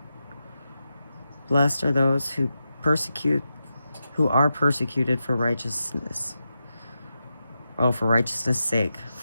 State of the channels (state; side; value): inverted; both; correlation -0.88